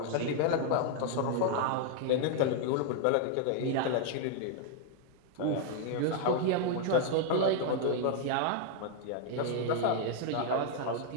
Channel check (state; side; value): different; both; correlation 0.00